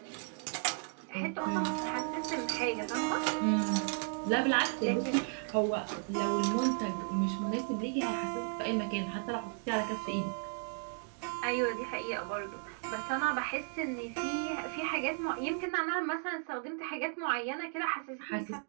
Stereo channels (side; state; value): left; silent; 55 dB below the other